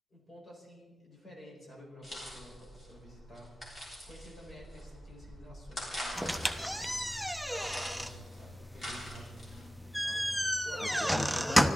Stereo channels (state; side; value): normal; both; correlation 0.96